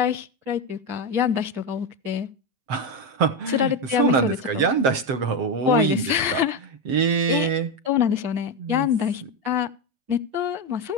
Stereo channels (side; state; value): left; late; 7.6 ms